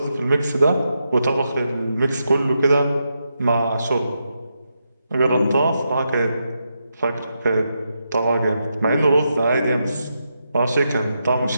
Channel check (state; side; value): inverted; both; correlation -0.84